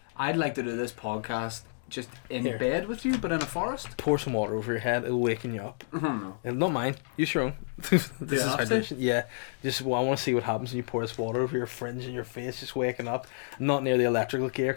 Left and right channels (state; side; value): silent; right; digital silence